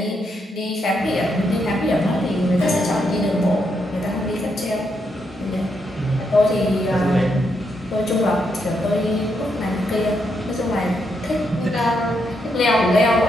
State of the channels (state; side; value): normal; both; correlation 0.79